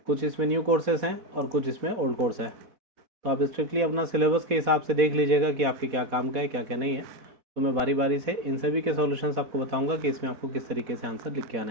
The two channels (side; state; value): left; late; 4.1 ms